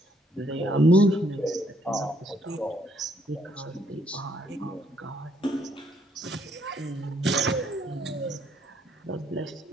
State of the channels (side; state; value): both; normal; correlation 0.69